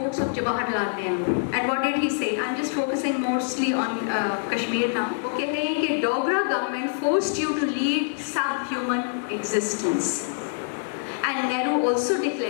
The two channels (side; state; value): right; silent; digital silence